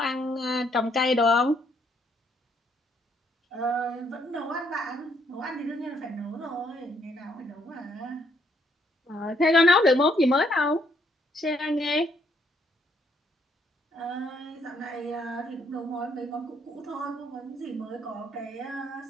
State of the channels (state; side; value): normal; both; correlation 0.70